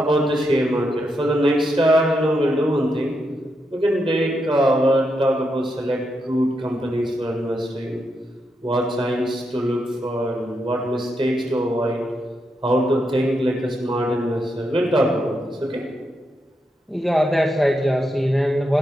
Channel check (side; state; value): both; normal; correlation 0.83